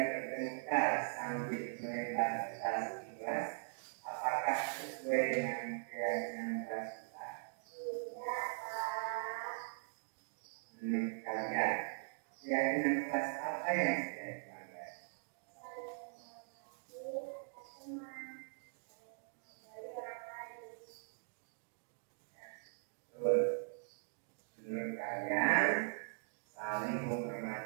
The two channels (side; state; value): left; silent; digital silence